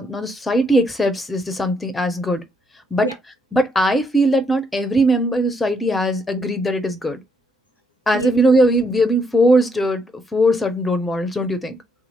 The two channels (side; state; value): both; normal; correlation 0.74